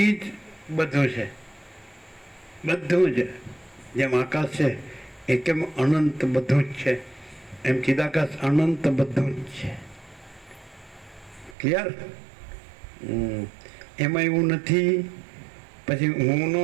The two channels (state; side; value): drops out; left; at 11.6 s